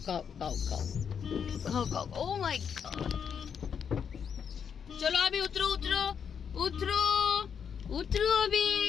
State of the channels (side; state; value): right; quieter; 7.2 dB